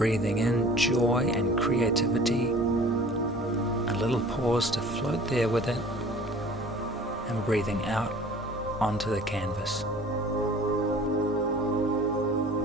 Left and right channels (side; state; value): both; normal; correlation 0.47